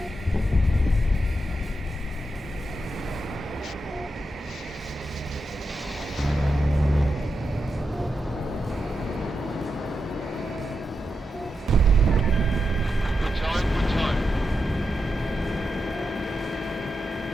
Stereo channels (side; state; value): both; normal; correlation 0.87